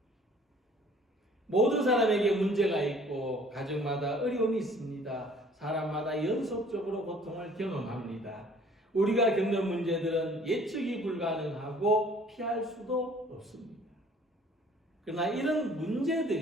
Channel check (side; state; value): both; normal; correlation 0.54